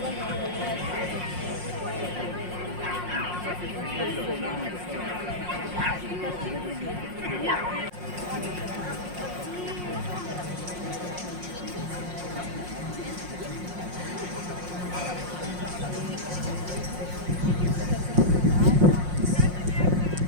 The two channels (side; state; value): left; late; 5.6 ms